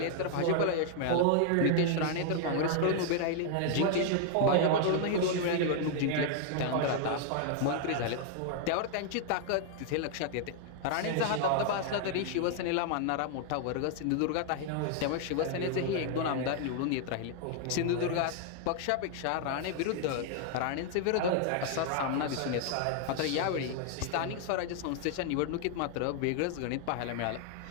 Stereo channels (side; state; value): both; different; correlation 0.00